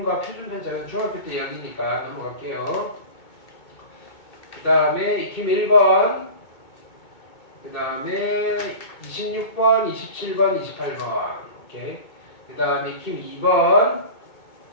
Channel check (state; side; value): late; right; 2.2 ms